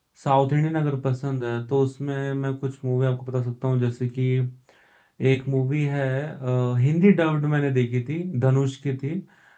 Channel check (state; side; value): identical; both; correlation 1.00